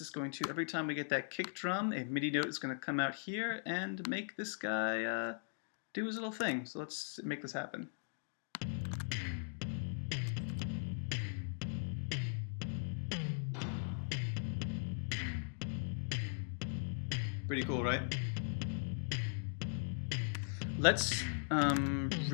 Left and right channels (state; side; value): silent; right; digital silence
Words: going to, every time we get that kick drum, a MIDI note is going to come out here and make this guy do his little thing. So let's make this happen. Pretty cool, right? Let's